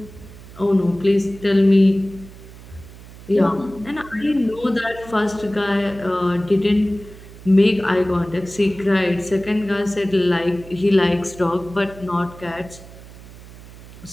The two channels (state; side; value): noise; right; hum, 18 dB below the sound